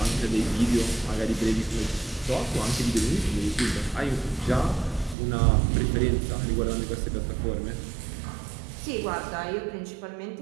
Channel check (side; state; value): left; drops out; at 5.2 s